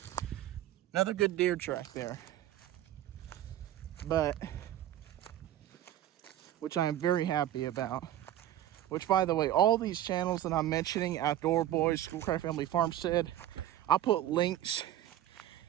Another good deer track there. But, which I am very happy about. Which, by the way, all these channels that I'm mentioning, Outdoor Boys, Schoolcraft Family Farmstead, I'll put links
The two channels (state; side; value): quieter; left; 12.5 dB